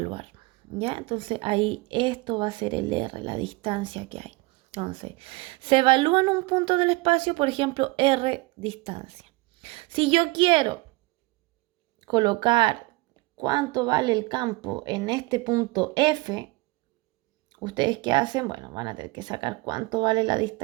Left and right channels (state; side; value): quieter; left; 23.9 dB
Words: ¿Ya? Entonces ahí esto va a ser el R, la distancia que hay. Entonces, se evalúa en un punto del espacio, por ejemplo, R distancia. Si yo quiero colocar cuánto vale el campo en este punto F, ¿ustedes qué hacen? Bueno, van a tener que sacar cuánto vale la